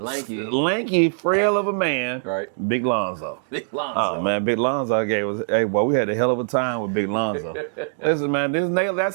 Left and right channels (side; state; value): left; silent; digital silence